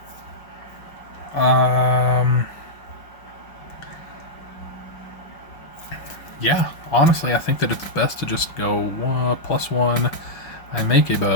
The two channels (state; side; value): late; right; 6.1 ms